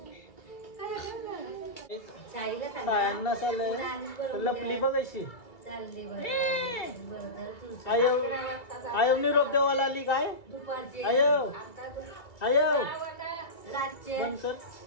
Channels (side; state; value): right; late; 2.4 ms